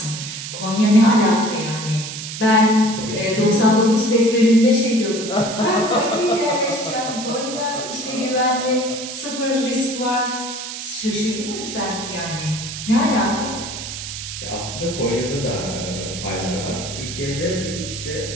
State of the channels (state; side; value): noise; right; hiss, 8 dB below the sound